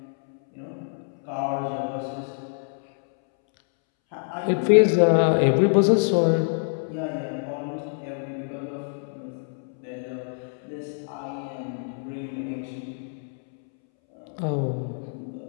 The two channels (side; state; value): right; silent; 61 dB below the other